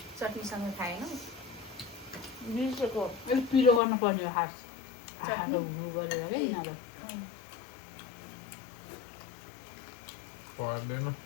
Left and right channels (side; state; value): right; drops out; at 3.8 s